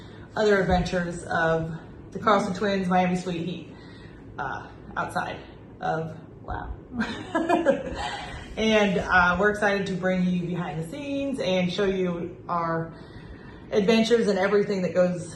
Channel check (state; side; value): identical; both; correlation 1.00